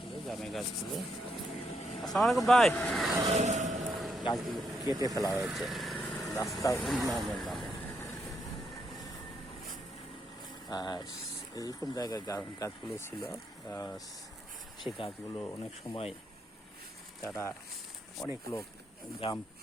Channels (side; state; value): both; normal; correlation 0.78